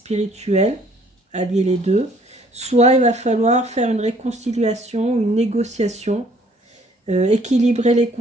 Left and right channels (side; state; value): both; normal; correlation 0.60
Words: allier les deux, soit il va falloir faire une réconciliation, une négociation, équilibrer les